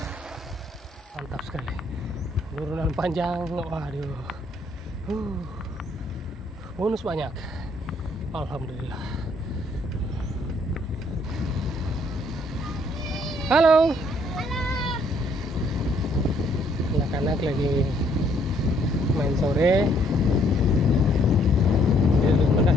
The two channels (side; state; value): both; normal; correlation 0.66